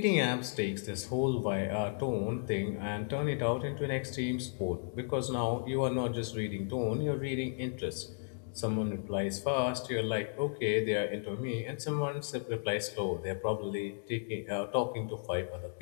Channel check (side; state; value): right; silent; digital silence